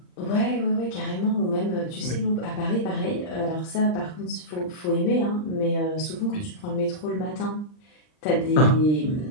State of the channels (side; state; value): right; late; 39 ms